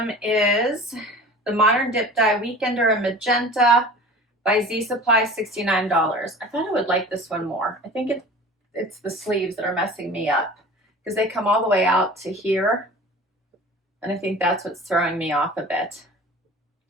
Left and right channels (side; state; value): both; normal; correlation 0.40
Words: is the Modern Dip Dye Weekender in Magenta by Z Supply, $69. I thought I would like this one more. I think it's the sleeves that are messing me up because they come all the way out to here. And I think that's what's throwing me off a bit.